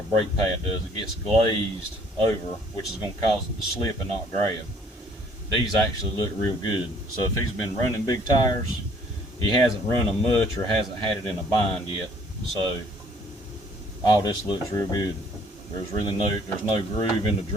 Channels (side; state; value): both; normal; correlation 0.60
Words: a brake pad does. It gets glazed over, which is going to cause it to slip and not grab. These actually look real good. So if he's been running big tires, he hasn't run them much or hasn't had it in a bind yet. So all this looks real good. There's no groove in the